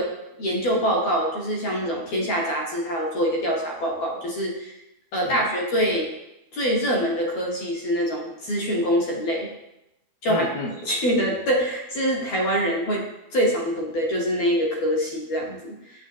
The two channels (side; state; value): right; late; 12 ms